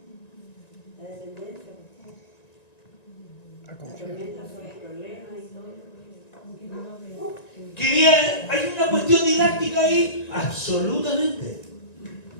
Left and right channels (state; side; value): late; right; 1.9 ms